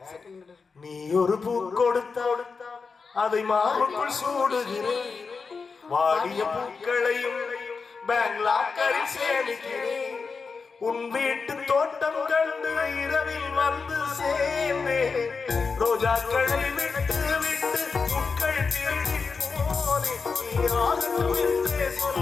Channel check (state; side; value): quieter; right; 4.9 dB